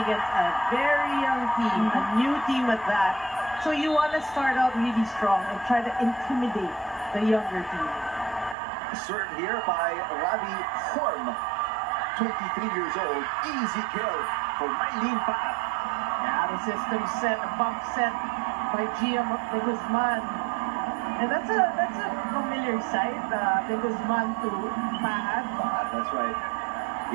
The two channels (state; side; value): drops out; left; at 8.6 s